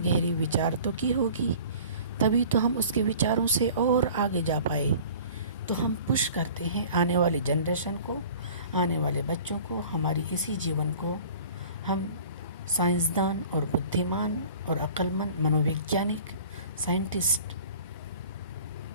विचार तो की होगी, तभी तो हम उसके विचारों से और आगे जा पाए। तो हम पुश करते हैं आने वाली जनरेशन को, आने वाले बच्चों को, हमारी इसी जीवन को हम साइंसदान और बुद्धिमान और अक्लमंद मनोवैज्ञानिक, साइंटिस्ट,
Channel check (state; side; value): inverted; both; correlation -0.46